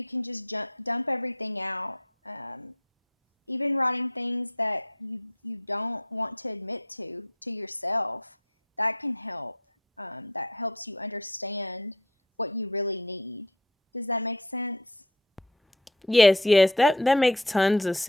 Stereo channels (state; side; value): normal; both; correlation 0.39